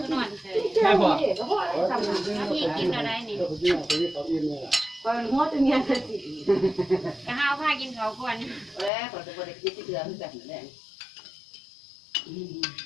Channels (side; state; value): right; drops out; at 8.9 s